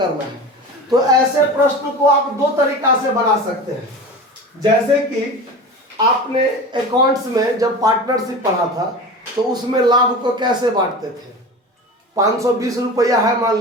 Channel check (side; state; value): both; normal; correlation 0.31